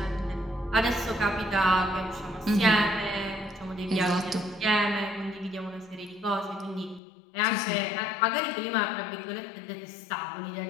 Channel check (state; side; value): drops out; right; at 7.0 s